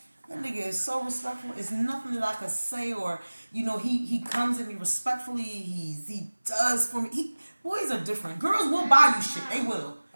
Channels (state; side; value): inverted; both; correlation -1.00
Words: That nigga is so respectful. It's nothing that I could say, or he comes at me respectfully. He does for me. Boys are different. Girls will buy you shit. They will.